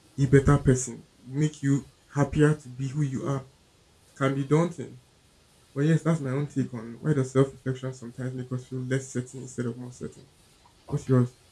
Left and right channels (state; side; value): identical; both; correlation 1.00